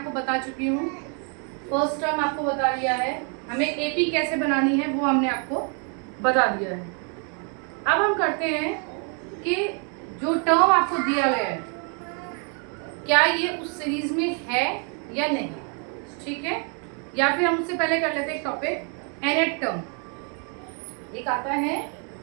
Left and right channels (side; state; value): left; quieter; 39.3 dB